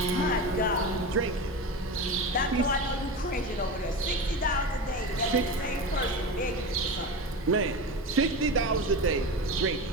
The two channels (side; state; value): both; normal; correlation 0.25